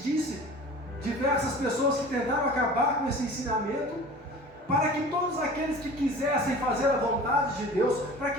diversas pessoas que tentaram acabar com esse ensinamento, para que todos aqueles que quisessem fazer a vontade de Deus, para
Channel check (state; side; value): normal; both; correlation 0.41